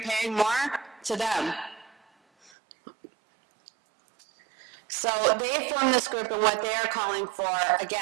paying more? To them. So they formed this group, and what they are calling for,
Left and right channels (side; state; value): left; drops out; at 2.5 s